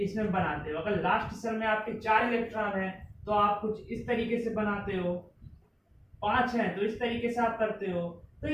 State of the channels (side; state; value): both; identical; correlation 1.00